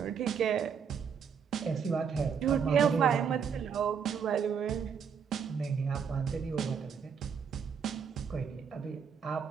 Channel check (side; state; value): left; quieter; 6.9 dB